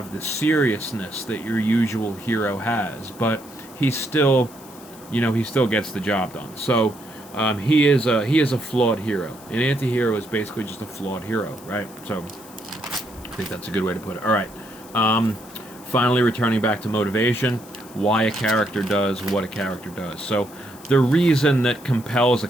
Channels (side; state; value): left; noise; hiss, 21 dB below the sound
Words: the seriousness that your usual hero has, but he still gets the job done. So he is a flawed hero. An anti-hero is basically just a flawed hero, right? So I think that's a good way to put it. All right. Finally, returning back to motivation, why a character does what a character does. So the reason that compels a